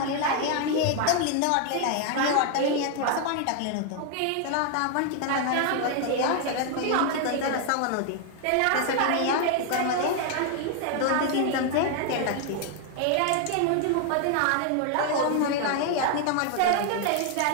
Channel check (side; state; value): both; different; correlation 0.00